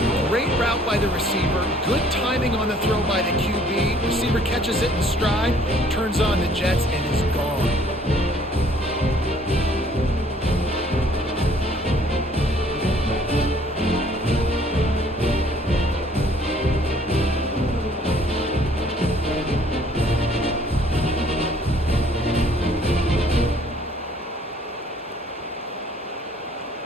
Great route by the receiver, good timing on the throw by the QB. Receiver catches it in stride, turns on the jets, and is gone.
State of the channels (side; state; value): both; normal; correlation 0.59